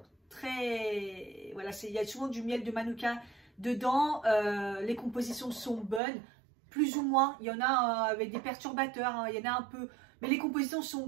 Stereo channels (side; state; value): left; drops out; at 6.0 s